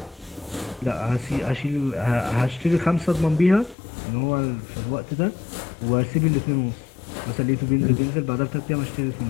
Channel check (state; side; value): drops out; right; at 3.8 s